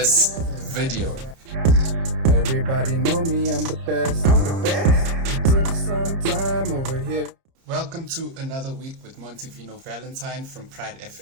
video. Everybody know me, I'm the best. I'm the best. Took some time over here. Welcome to another week with Montivino Valentine from Pride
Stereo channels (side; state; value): left; late; 30 ms